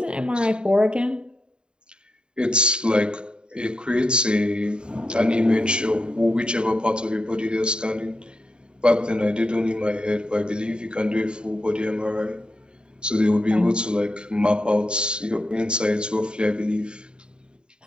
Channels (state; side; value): late; left; 0.049 ms